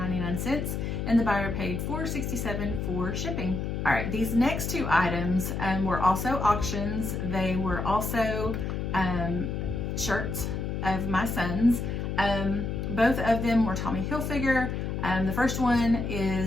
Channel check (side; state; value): left; noise; hum, 3 dB below the sound